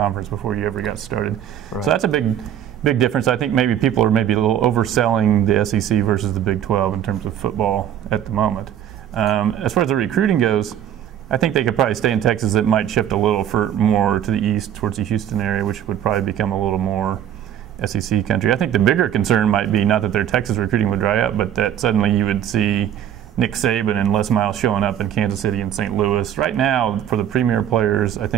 before you ever got started. Right. So that's a big difference. I think maybe people are maybe a little overselling the SEC versus the Big 12 in terms of football at the moment. As far as the recruiting goes, I think they could probably stay in Texas. It might shift a little more to the east towards the Houston area, which would probably become a little more SEC country. I think the bigger concern might be not that their Texas recruiting would dry up, but that suddenly you would see Nick Saban and Les Miles showing up in Kansas City and St. Louis. Right now, for the premier players, I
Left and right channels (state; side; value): quieter; left; 10.2 dB